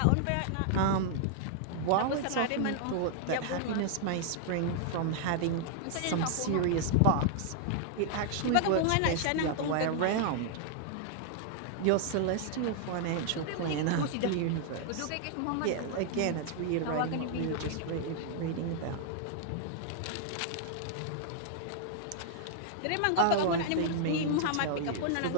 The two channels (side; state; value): both; different; correlation -0.01